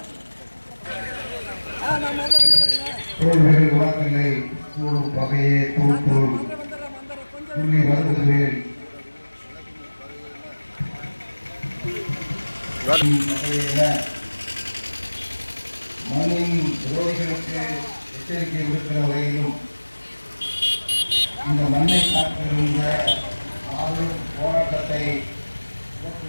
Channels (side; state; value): both; inverted; correlation -1.00